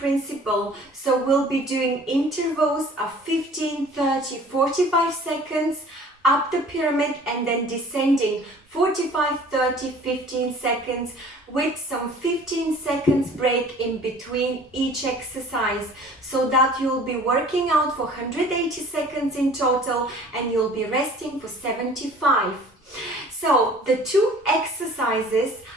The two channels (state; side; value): normal; both; correlation 0.49